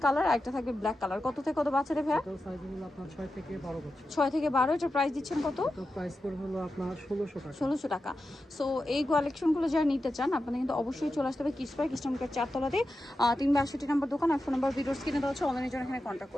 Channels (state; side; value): normal; both; correlation 0.91